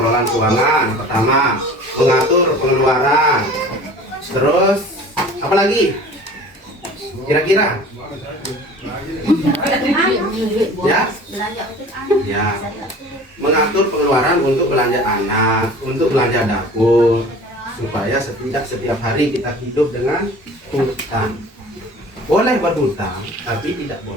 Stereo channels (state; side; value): normal; both; correlation 0.43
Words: keuangan. Pertama, mengatur pengeluaran. Terus, apa lagi? Kira-kira? Ya? Ya. Mengatur pengeluaran untuk belanja anak, untuk belanja dapur, supaya setiap hari kita hidup dengan hutang. Boleh berhutang, tapi tidak